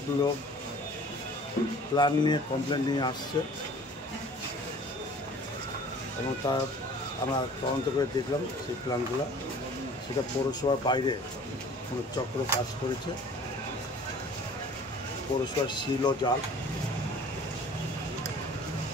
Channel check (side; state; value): both; normal; correlation 0.48